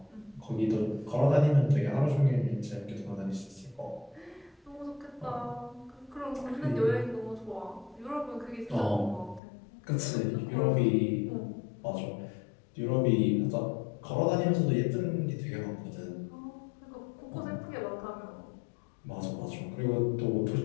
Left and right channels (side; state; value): right; drops out; at 9.4 s